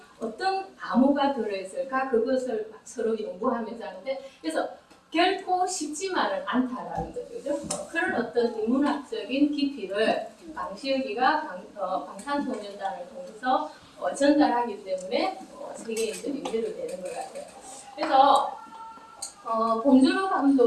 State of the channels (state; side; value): identical; both; correlation 1.00